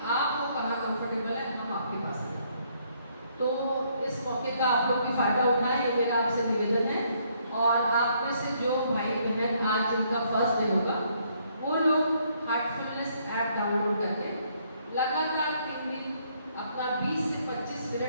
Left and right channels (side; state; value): both; inverted; correlation -0.69